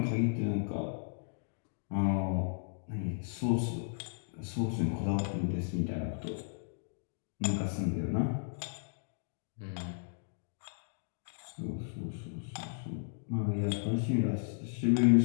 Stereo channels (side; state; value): right; silent; digital silence